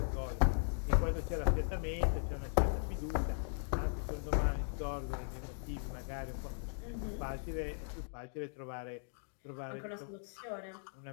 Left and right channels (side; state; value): right; silent; digital silence